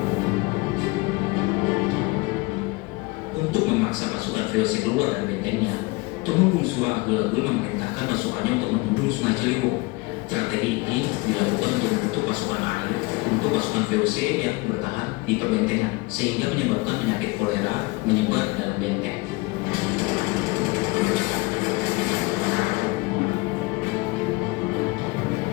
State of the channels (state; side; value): quieter; right; 24.3 dB